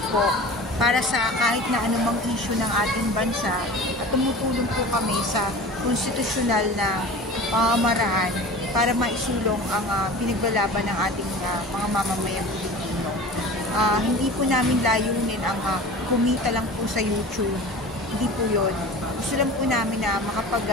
po para sa kahit na anumang issue ng ating bansa at tumutulong po kami sa konstitusyonal na pamamaraan para maisulong ang pinaglalaban ng ating mga mamamayang Pilipino. Hindi po namin layunin ang kumita lang po sa YouTube. Hindi po yun. Gusto lang po namin na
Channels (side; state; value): both; normal; correlation 0.37